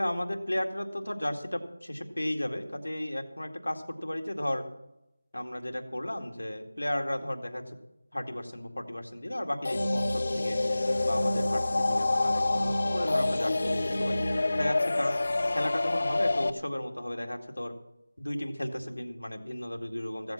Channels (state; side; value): inverted; both; correlation -0.98